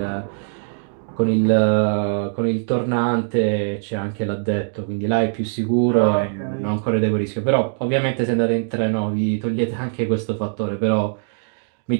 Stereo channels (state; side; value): silent; left; 65 dB below the other